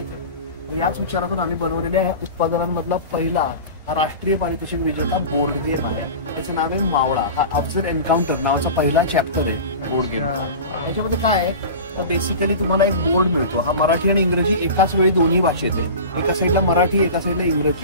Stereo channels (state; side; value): inverted; both; correlation -0.33